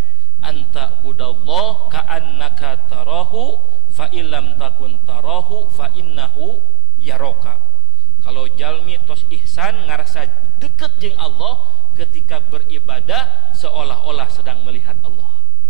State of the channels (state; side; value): normal; both; correlation 0.32